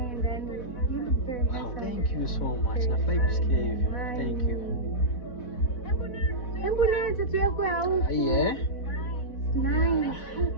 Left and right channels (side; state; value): right; late; 4.1 ms